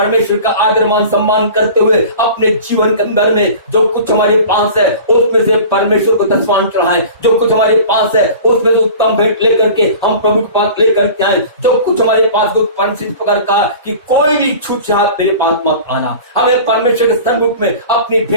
का आदर मान सम्मान करते हुए अपने जीवन के अंदर में जो कुछ हमारे पास है उसमें से परमेश्वर को दशमांश चढ़ाएं। जो कुछ हमारे पास है उसमें से उत्तम भेंट लेकर के हम प्रभु के पास लेकर के आए। जो कुछ हमारे पास परमेश्वर प्रकार का कि कोई भी छूछात मेरे पास मत आना। हमें परमेश्वर के सन्मुख में अपनी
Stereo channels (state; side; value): inverted; both; correlation -0.40